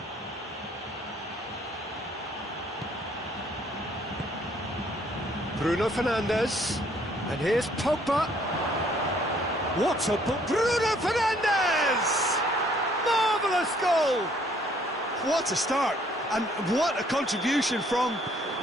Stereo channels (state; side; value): normal; both; correlation 0.63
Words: Bruno Fernandes. And here's Pogba. What a ball! Bruno Fernandes! Marvellous goal! What a start, and what a contribution from